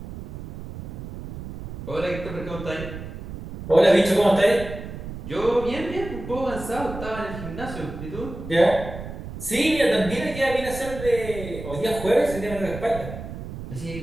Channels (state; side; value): noise; right; rumble, 10 dB below the sound